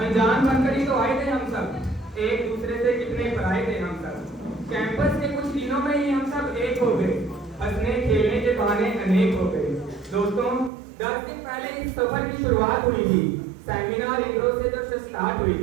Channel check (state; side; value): drops out; left; at 10.7 s